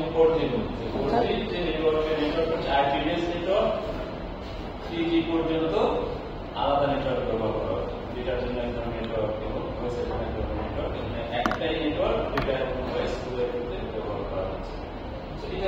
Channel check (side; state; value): both; identical; correlation 1.00